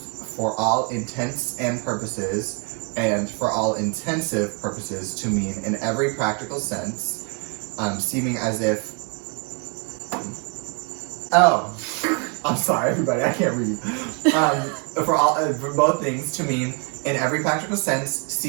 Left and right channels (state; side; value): quieter; left; 35.1 dB